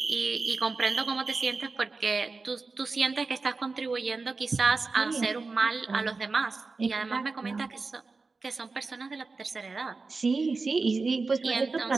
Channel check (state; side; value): quieter; left; 4.0 dB